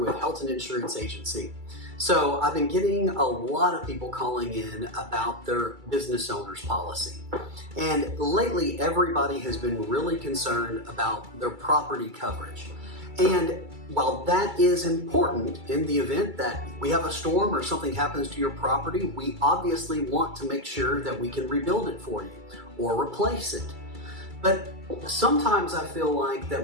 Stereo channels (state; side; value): late; left; 2.3 ms